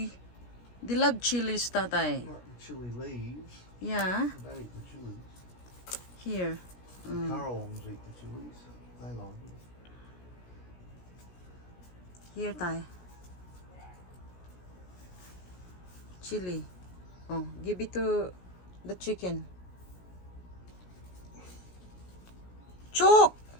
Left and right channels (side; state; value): right; late; 17 ms